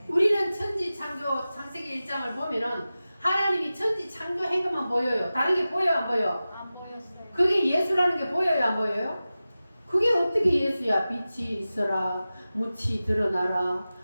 우리는 천지창조 창세기 1장을 보면은 하나님이 천지창조한 것만 보여요. 다른 게 보여요, 안 보여? 안 보였어요. 그게 예수라는 게 보여요, 안 보여요? 그게 어떻게 예수야? 빛이 있어라, 묻이 드러나라,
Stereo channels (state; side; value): inverted; both; correlation -0.95